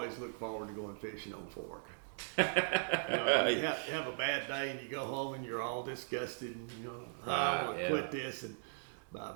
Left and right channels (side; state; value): left; silent; digital silence